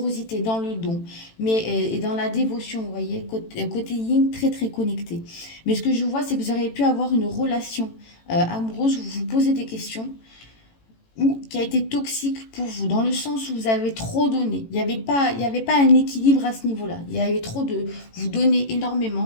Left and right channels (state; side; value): late; right; 18 ms